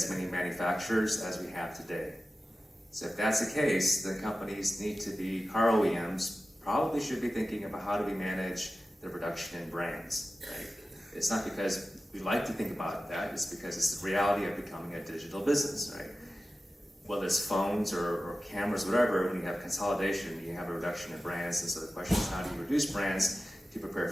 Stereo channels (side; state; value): both; normal; correlation 0.95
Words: many manufacturers as we have today. So if that's the case, then companies need to be, car OEMs probably should be thinking about how do we manage the production in brands, right? It's not because we like to think about that, it's because it's the reality of becoming a digital business, right? Whether it's phones or cameras, whatever, when you have consolidation, you have a reduction in brands, and so the question is how do you reduce brands to prepare